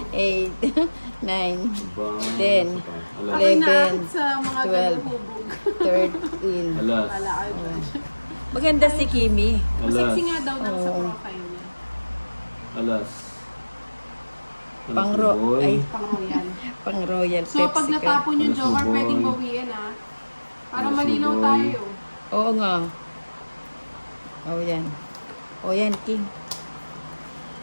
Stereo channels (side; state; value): both; inverted; correlation -1.00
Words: 8, 9, Ba, 10, Alas. Ako'y 11, naakit sa mga 12, galuhubog. 13. Alas. Wala kayo dyan. Maganda si Kimi. Alas. Masexy nga daw nang sa Oo. profile niya. Alas. Alas Pang ni ro- boy. ay. Pang royal. Pang Royal So, pag Pepsi ka. natapon yung Alas, joker, boy. pwedeng bawiin ah. Para Alas, malinaw boy. tayo. Oo nga. Oh, yan. Oh, yan, King.